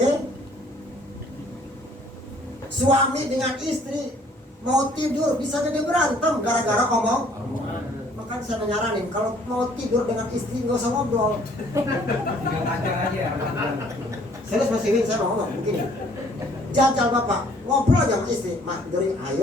Suami dengan istri mau tidur bisa jadi berantem gara-gara omong. Makanya saya nyaranin kalau mau tidur dengan istri nggak usah ngobrol. Serius Mas Iwin, saya mau ngomong begini. Jajal bapak ngobrol aja sama istri, mak tidurin,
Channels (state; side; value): normal; both; correlation 0.59